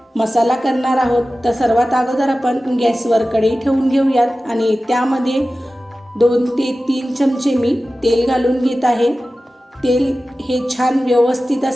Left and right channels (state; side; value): normal; both; correlation 0.95